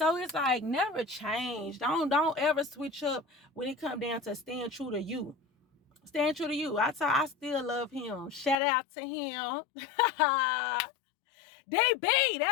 it's like, never change. Don't ever switch up when it come down to staying true to you. Staying true to you. I still love him. Shout out to him. DB,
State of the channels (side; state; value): right; drops out; at 8.6 s